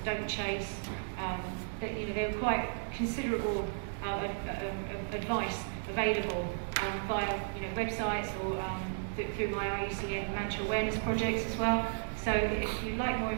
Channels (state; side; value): silent; left; digital silence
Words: don't chase. That, you know, there were quite considerable advice available via, you know, websites or through my IUCN Manta awareness projects as well. So if you'd like more